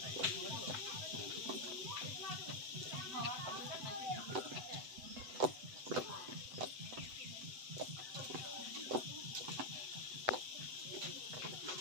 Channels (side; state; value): left; late; 7.9 ms